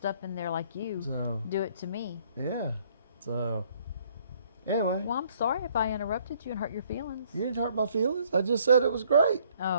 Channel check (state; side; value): inverted; both; correlation -0.63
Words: in there like you do it to me. Yeah. So anyway. Well, I'm sorry if I interrupted you and hurt your feelings. You didn't hurt my feelings. I just said it was great.